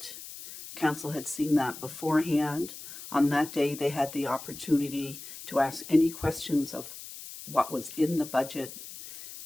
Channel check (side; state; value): left; noise; hiss, 13 dB below the sound